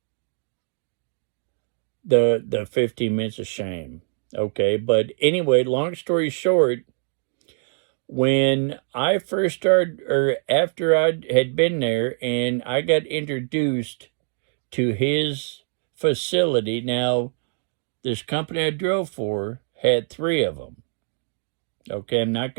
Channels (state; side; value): silent; left; digital silence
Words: the 15 minutes of shame. Okay, but anyway, long story short, when I first started, or after I had been there and I got introduced to his facility, now this company I drove for had 3 of them. Okay, I'm not